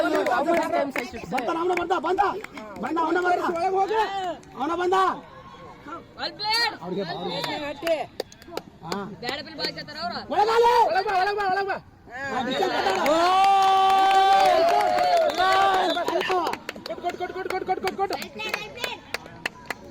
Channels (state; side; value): identical; both; correlation 1.00